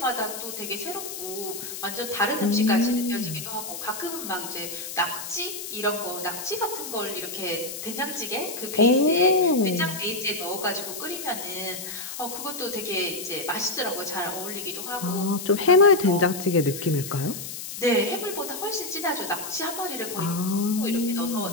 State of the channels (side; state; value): left; noise; hiss, 8 dB below the sound